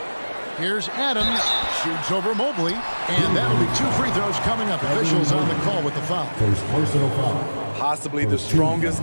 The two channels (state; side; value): inverted; both; correlation -1.00